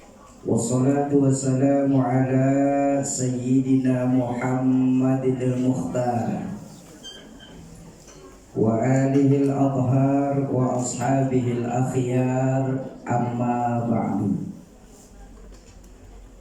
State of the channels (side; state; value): both; identical; correlation 1.00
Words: Wassalatu wassalamu ala sayyidina Muhammadil Mukhtar wa alihil adhar wa ashabihil akhyar, amma ba'du.